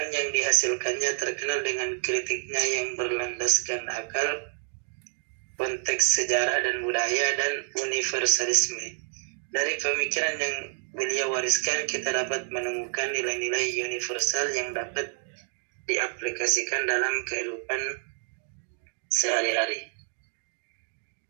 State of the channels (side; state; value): left; silent; 59 dB below the other